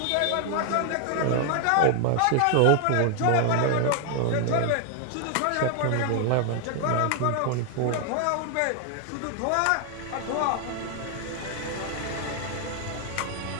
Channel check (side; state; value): both; different; correlation 0.00